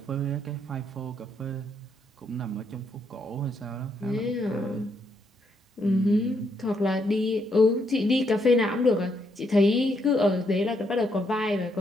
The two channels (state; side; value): normal; both; correlation 0.76